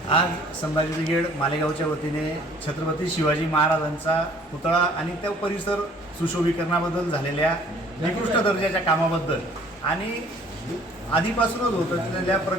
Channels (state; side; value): normal; both; correlation 0.55